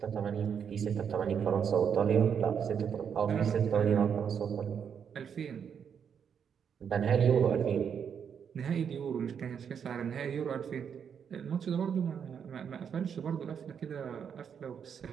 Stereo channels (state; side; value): quieter; left; 7.5 dB